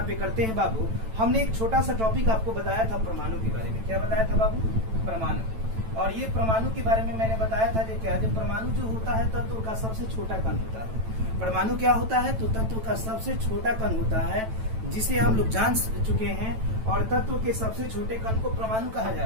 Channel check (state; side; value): late; left; 9.0 ms